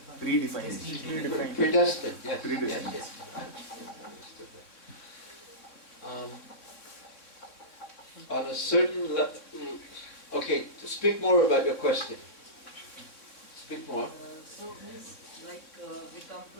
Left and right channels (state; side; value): late; right; 3.5 ms